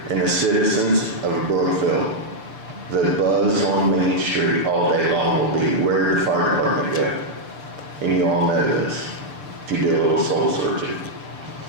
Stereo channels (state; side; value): late; left; 6.8 ms